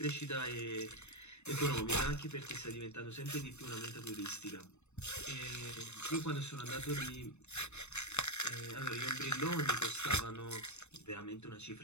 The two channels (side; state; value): right; late; 0.82 ms